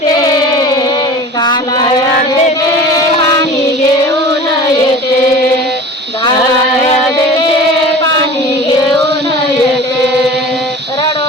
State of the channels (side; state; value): both; normal; correlation 0.39